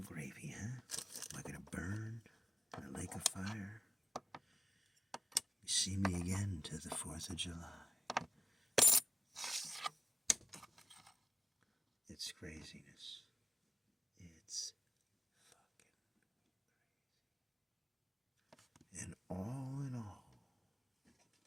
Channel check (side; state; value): both; normal; correlation 0.95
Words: gravy, huh? Am I going to burn in a lake of fire? You see me again to the 4th of July. It's craziness. It's fucking crazy. And all in all,